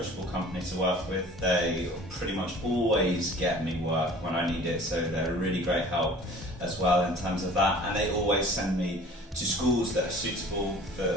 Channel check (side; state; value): both; normal; correlation 0.46